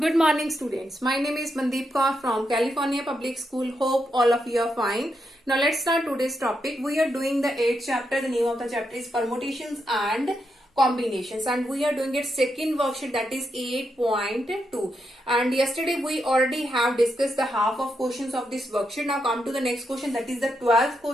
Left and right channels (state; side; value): normal; both; correlation 0.83